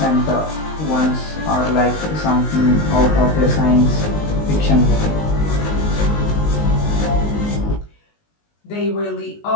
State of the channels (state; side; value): late; right; 19 ms